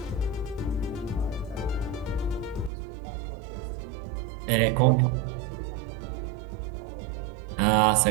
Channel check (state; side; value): drops out; left; at 2.7 s